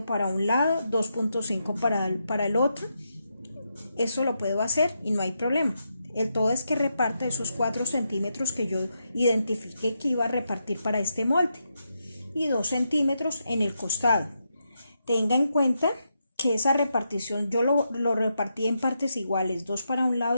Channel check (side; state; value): both; inverted; correlation -0.83